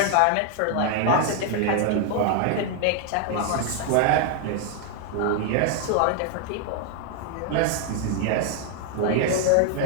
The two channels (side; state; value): both; different; correlation 0.00